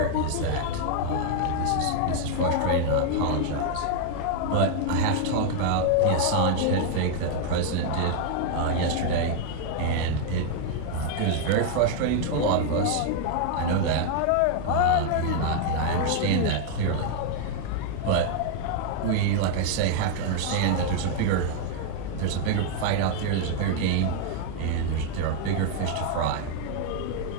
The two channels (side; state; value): both; different; correlation 0.00